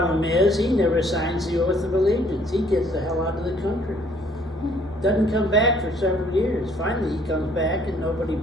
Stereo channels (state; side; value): normal; both; correlation 0.62